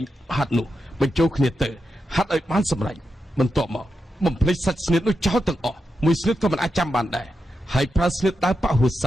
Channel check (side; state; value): both; normal; correlation 0.87